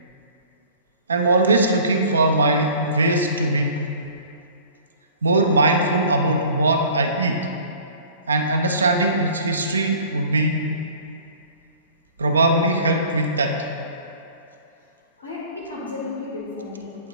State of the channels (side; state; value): both; inverted; correlation -0.48